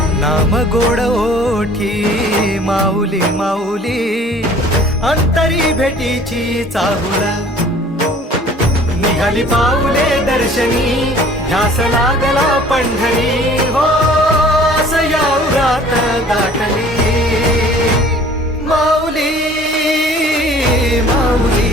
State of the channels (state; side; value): normal; both; correlation 0.51